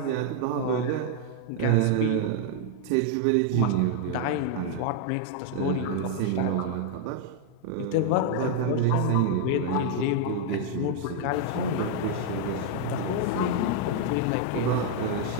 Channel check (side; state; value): both; different; correlation 0.00